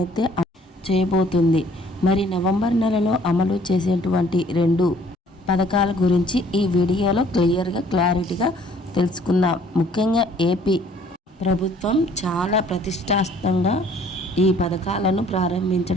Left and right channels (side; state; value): both; normal; correlation 0.58